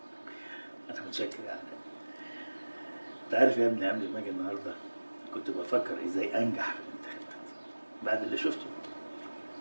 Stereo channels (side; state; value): both; inverted; correlation -1.00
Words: انا متشكر يا علاء. انت عارف يا ابني قبل ما اجي النهارده كنت بفكر ازاي انجح في الانتخابات. بعد اللي شفته